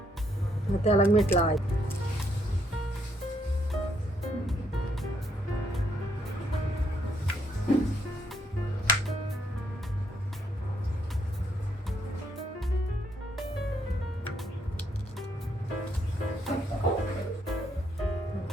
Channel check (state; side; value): normal; both; correlation 0.73